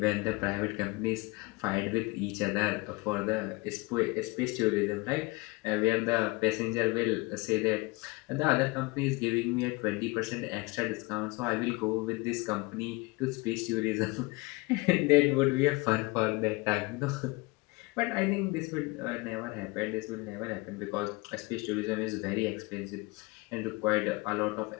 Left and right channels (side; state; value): right; quieter; 25.1 dB